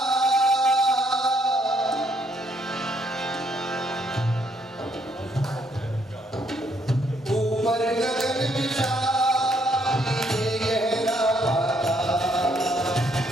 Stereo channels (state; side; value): normal; both; correlation 0.70